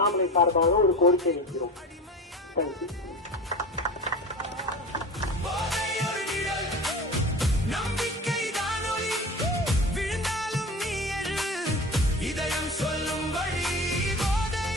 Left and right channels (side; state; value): both; normal; correlation 0.33